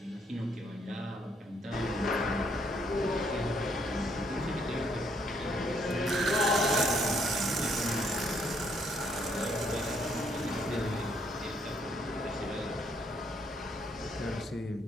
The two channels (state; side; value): normal; both; correlation 0.69